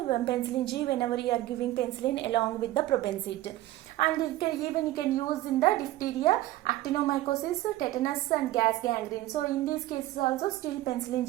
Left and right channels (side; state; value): left; quieter; 15.8 dB